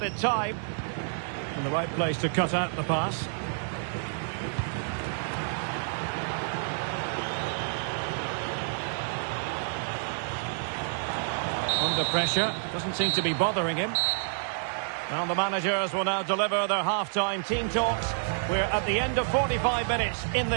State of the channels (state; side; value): silent; left; digital silence